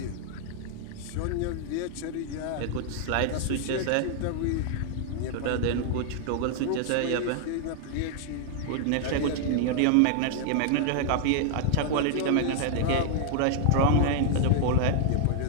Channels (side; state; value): both; different; correlation 0.00